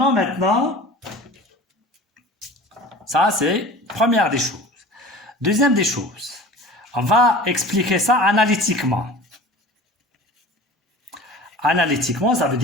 maintenant, ça c'est première des choses. Deuxième des choses, on va expliquer ça analytiquement. Analytiquement, ça veut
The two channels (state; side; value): normal; both; correlation 0.39